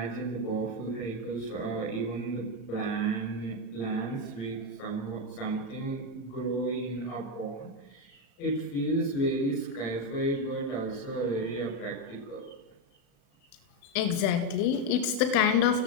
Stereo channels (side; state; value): right; late; 36 ms